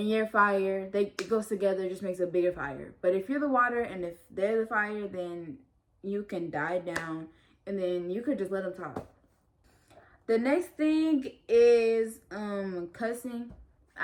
you're fire. It goes together, just makes a bigger fire. But if you're the water and if they're the fire, then you can die down, and then you could just let them talk. The next thing is cussing.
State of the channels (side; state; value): both; identical; correlation 1.00